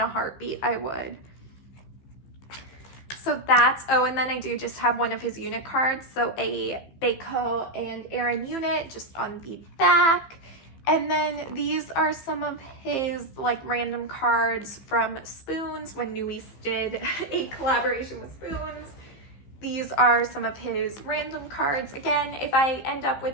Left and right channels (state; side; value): late; right; 15 ms